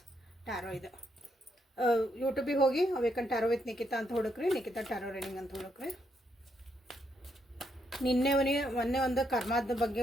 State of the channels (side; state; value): both; normal; correlation 0.77